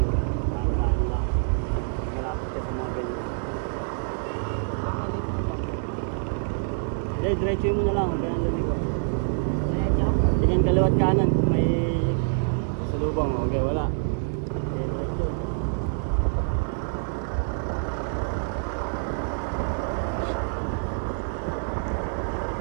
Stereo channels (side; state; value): left; silent; digital silence